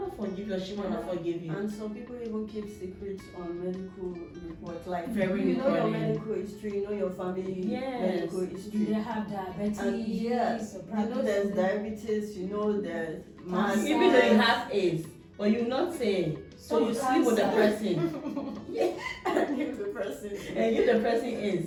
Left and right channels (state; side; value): identical; both; correlation 1.00